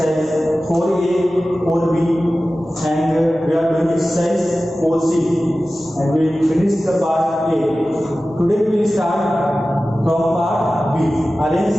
4A, 4B and we are doing exercise 4C and we finished the part A. Today we will start from part B.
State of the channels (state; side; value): normal; both; correlation 0.95